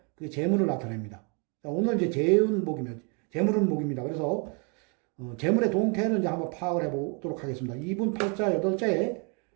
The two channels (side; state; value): left; quieter; 35.5 dB